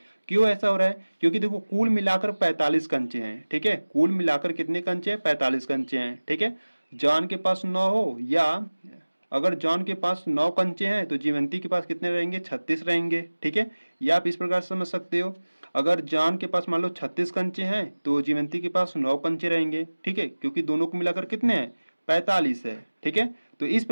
क्यों ऐसा हो रहा है, क्योंकि देखो कुल मिलाकर 45 कंचे हैं, ठीक है। कुल मिलाकर कितने कंचे हैं, 45 कंचे हैं, ठीक है। जॉन के पास 9 हो या अगर जॉन के पास 9 कंचे हैं तो जीवंती के पास कितने रहेंगे, 36 रहेंगे, ठीक है। या आप इस प्रकार से समझ सकते हो, अगर जॉन के पास मान लो 36 कंचे हैं तो जीवंती के पास 9 कंचे रहेंगे, ठीक है, क्योंकि दोनों को मिलाकर कितने हैं, 45 है, ठीक है। तो इस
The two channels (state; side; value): inverted; both; correlation -1.00